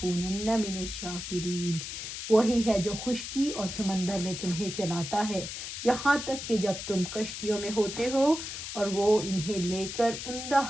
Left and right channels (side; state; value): left; noise; hiss, 7 dB below the sound